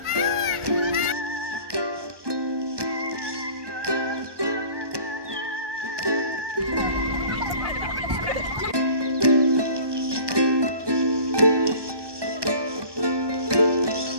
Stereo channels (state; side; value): late; left; 1.2 ms